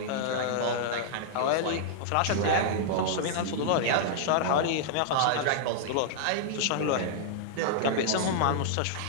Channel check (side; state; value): both; different; correlation -0.01